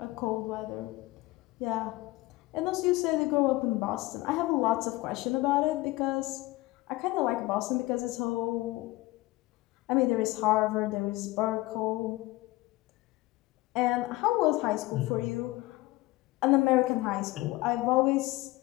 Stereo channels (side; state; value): right; quieter; 19.7 dB